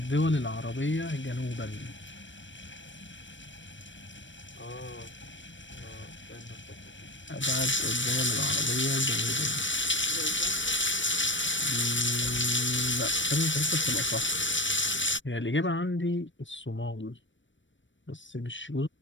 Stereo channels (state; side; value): late; right; 0.55 ms